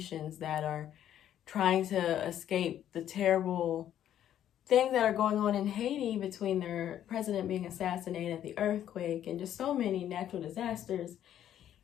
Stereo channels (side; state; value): right; quieter; 10.9 dB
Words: that are trying to escape the terrible things that are going on in Haiti between their president being assassinated, the earthquake, and just so many natural disasters.